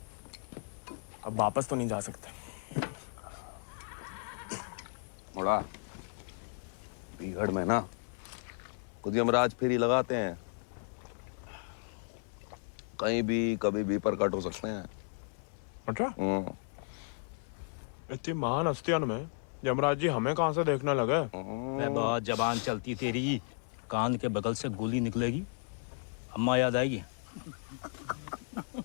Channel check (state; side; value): silent; right; 55 dB below the other